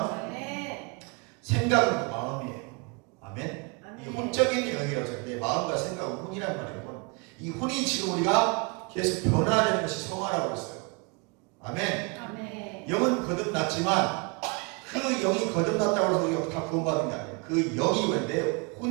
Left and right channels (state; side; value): quieter; left; 30.9 dB